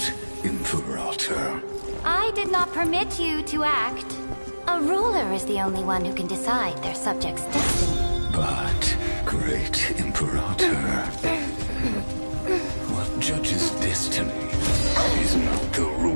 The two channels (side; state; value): both; inverted; correlation -1.00